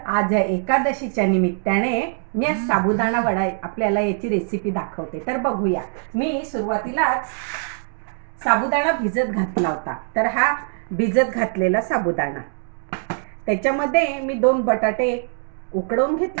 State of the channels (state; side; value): silent; left; 64 dB below the other